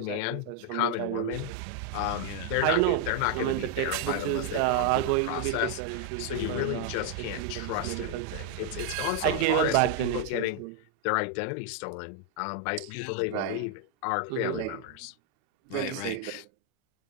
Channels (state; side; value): different; both; correlation 0.00